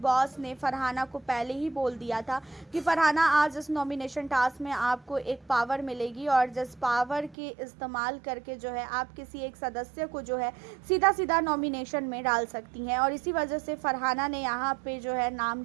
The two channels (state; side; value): drops out; left; at 7.4 s